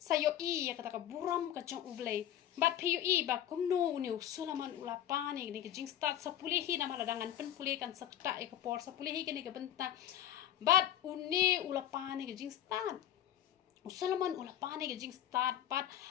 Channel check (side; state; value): right; quieter; 11.4 dB